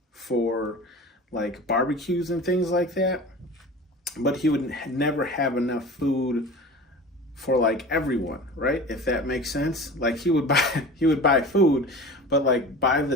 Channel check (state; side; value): normal; both; correlation 0.36